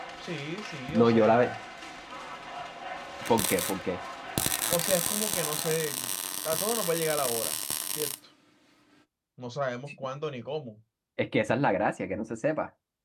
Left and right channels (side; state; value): both; identical; correlation 1.00